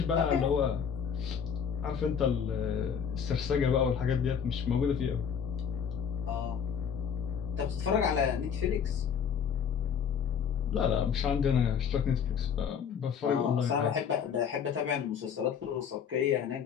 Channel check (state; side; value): quieter; right; 7.3 dB